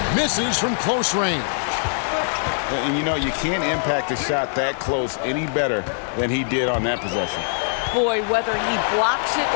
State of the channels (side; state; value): right; silent; digital silence